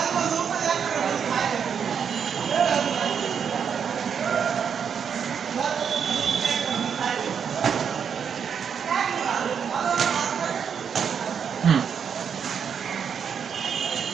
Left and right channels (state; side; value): quieter; left; 7.2 dB